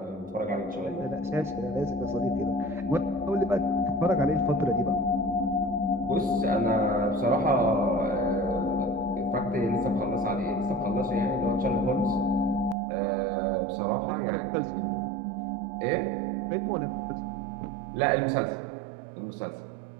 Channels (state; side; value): drops out; left; at 12.8 s